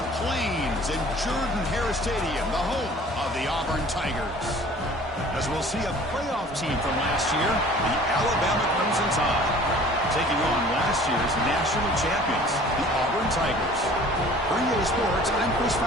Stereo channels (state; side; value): normal; both; correlation 0.48